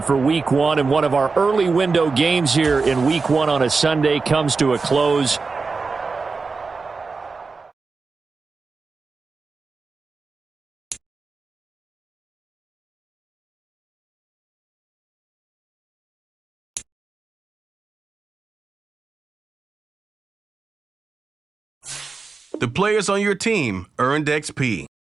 for Week 1, and one of our early window games here in Week 1 on a Sunday comes to a close. The players on your team earned XP.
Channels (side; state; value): left; quieter; 4.4 dB